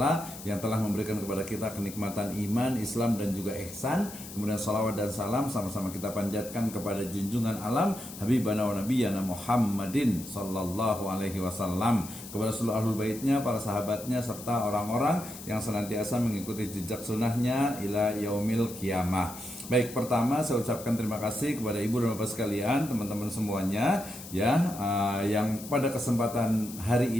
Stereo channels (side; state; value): left; noise; hiss, 14 dB below the sound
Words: yang telah memberikan kepada kita kenikmatan iman, Islam dan juga ihsan. Kemudian salawat dan salam sama-sama kita panjatkan kepada junjungan alam habibana wa nabiyyana Muhammadin sallallahu alaihi wasallam, kepada seluruh ahlul baitnya, para sahabatnya serta orang-orang yang senantiasa mengikuti jejak sunnahnya ila yaumil qiyamah. Baik, pertama saya ucapkan terima kasih kepada ibu dan bapak sekalian, teman-teman semuanya ya, yang pada kesempatan hari